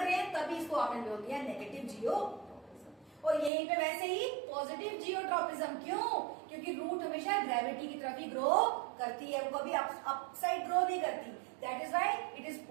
रहे हैं, तभी इसको आपने बोल दिया नेगेटिव जियोट्रॉपिज्म। और यहीं पे वैसे ही पॉजिटिव जियोट्रॉपिज्म, क्यों? क्योंकि रूट हमेशा ग्रेविटी की तरफ ही ग्रो करती है, वो कभी अपसाइड ग्रो नहीं करती, that is why it is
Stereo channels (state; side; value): drops out; left; at 3.5 s